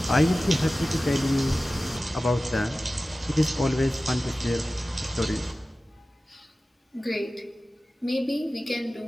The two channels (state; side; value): normal; both; correlation 0.96